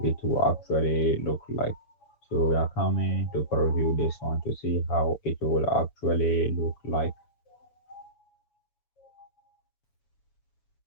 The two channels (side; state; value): right; late; 7.0 ms